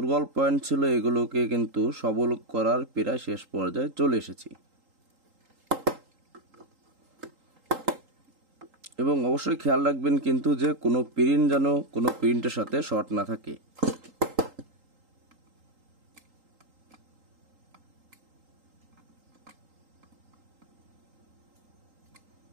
পয়েন্ট ছিল এগুলোকে কিন্তু সবল করার প্রায় শেষ পর্যায়ে চলে এসেছি, এবং অবশ্যই খেয়াল রাখবেন কিন্তু যে কোনো প্রিন্ট যেন কোনো প্রিন্টের সাথে শর্ট না থাকে।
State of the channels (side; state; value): left; late; 3.8 ms